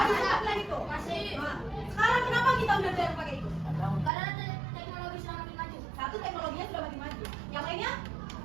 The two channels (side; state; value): left; drops out; at 4.1 s